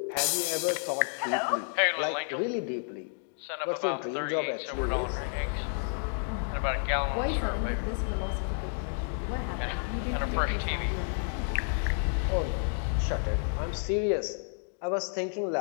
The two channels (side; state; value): right; silent; 57 dB below the other